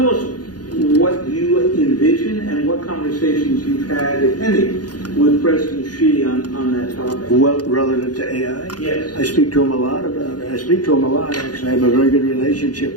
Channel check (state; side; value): late; right; 0.69 ms